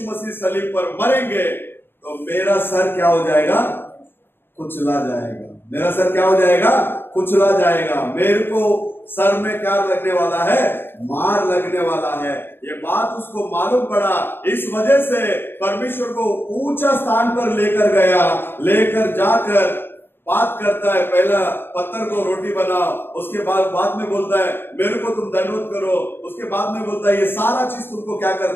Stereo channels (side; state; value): right; late; 0.10 ms